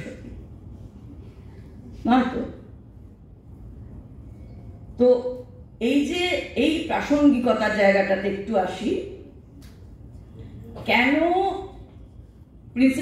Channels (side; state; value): both; identical; correlation 1.00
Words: নয় তো। তো এই যে এই প্রাসঙ্গিকতার জায়গাটাতে একটু আসি। কেন